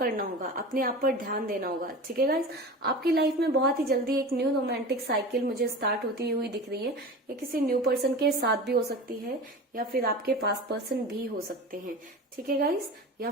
होगा, अपने आप पर ध्यान देना होगा। ठीक है गाइस, आपकी लाइफ में बहुत ही जल्दी एक न्यू रोमांटिक साइकिल मुझे स्टार्ट होती हुई दिख रही है। ये किसी न्यू पर्सन के साथ भी हो सकती है या फिर आपके पास पर्सन भी हो सकते हैं। ठीक है गाइस, या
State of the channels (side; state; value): both; normal; correlation 0.33